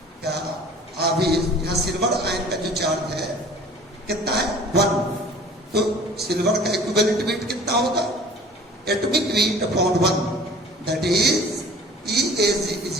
का आवेश यहाँ सिल्वर आयन का जो चार्ज है कितना है 1, तो सिल्वर का इक्विवेलेंट वेट कितना होगा, atomic weight upon 1 that is EAG is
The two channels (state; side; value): normal; both; correlation 0.46